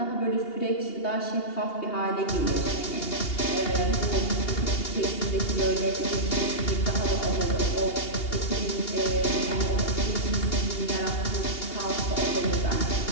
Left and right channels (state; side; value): late; right; 2.8 ms